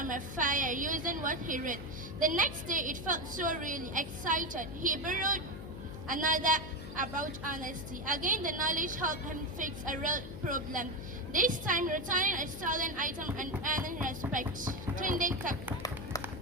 a fire using what he read. The next day it felt so really excited. He borrowed another about honesty. Again, the knowledge helped him fix a real problem. This time, returning a stolen item and earning respect. Tunde kept.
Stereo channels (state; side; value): noise; left; hum, 10 dB below the sound